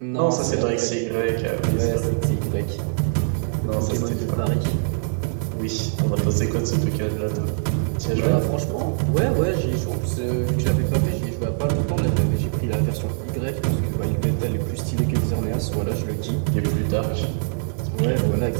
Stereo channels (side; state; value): left; silent; 62 dB below the other